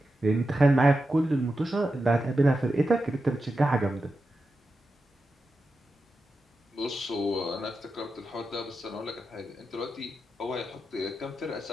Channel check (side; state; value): both; normal; correlation 0.90